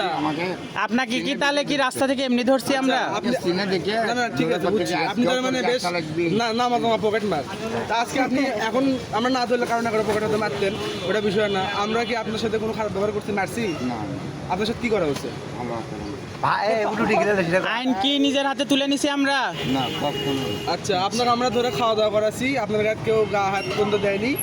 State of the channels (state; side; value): identical; both; correlation 1.00